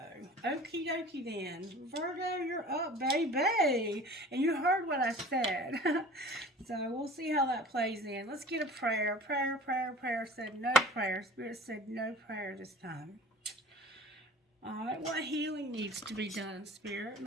Okie dokie then. Virgo, you're up, baby. And you heard what I said. So we'll see how that plays in. Let's get a prayer. Prayer said no prayer. Spirit said no prayer this time. Alright, what healing needs to be done, Spirit?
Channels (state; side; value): normal; both; correlation 0.42